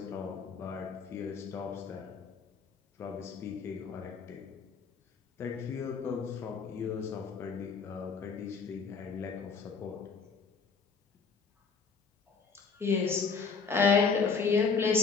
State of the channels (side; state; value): right; quieter; 5.2 dB